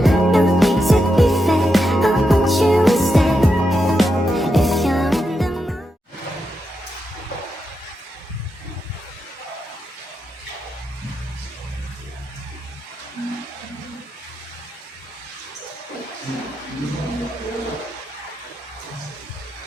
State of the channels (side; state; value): both; normal; correlation 0.85